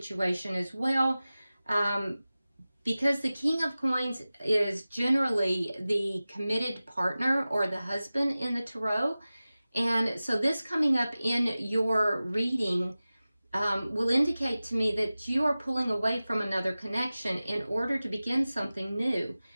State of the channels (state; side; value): inverted; both; correlation -0.97